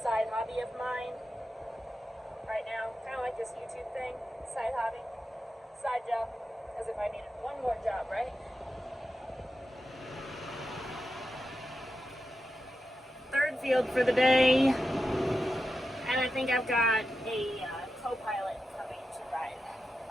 hobby of mine right now, kind of like this YouTube thing, side hobby, side job, as if I needed one more job, right? Third field for the day, and I think I've got a co-pilot coming to ride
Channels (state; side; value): normal; both; correlation 0.90